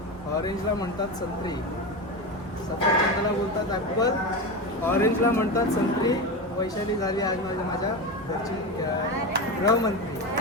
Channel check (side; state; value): both; normal; correlation 0.19